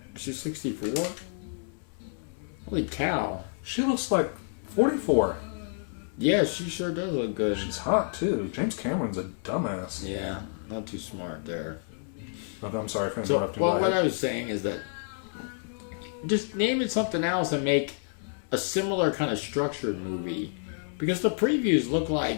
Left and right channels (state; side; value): silent; right; 58 dB below the other